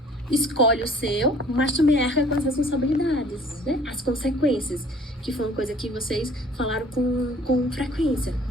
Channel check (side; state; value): both; normal; correlation 0.53